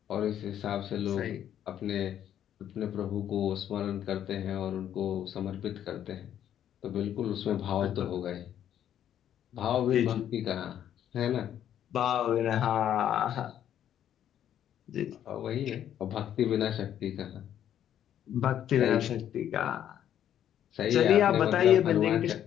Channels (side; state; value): right; quieter; 10.4 dB